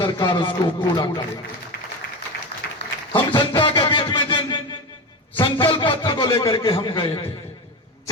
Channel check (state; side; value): normal; both; correlation 0.22